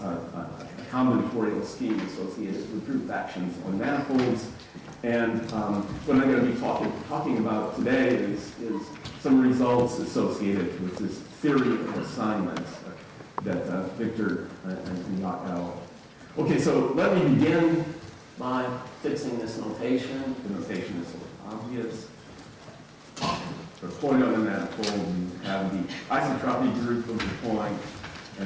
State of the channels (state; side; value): identical; both; correlation 1.00